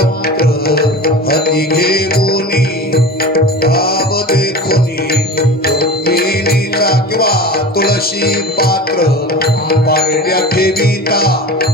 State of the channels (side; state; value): both; normal; correlation 0.34